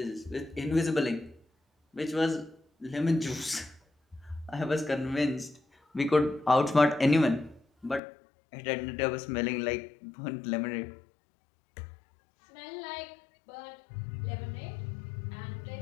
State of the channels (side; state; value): right; drops out; at 8.0 s